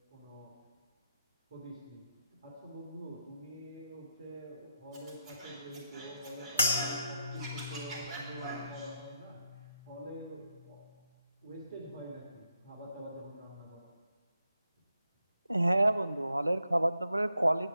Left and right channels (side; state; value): both; inverted; correlation -0.84